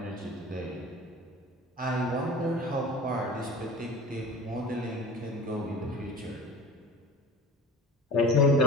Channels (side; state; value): both; normal; correlation 0.37